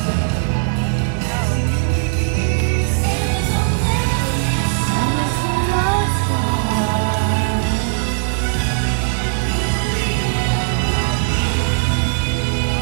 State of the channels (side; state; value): left; silent; digital silence